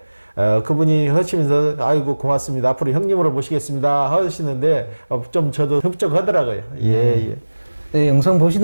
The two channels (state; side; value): inverted; both; correlation -1.00